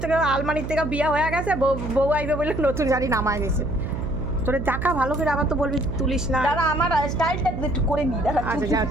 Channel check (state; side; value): noise; right; hum, 6 dB below the sound